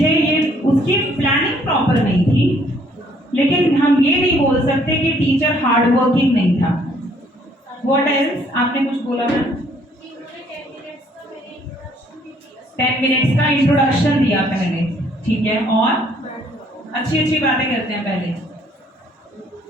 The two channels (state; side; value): normal; both; correlation 0.63